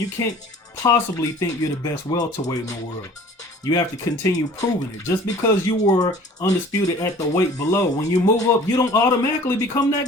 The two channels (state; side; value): normal; both; correlation 0.48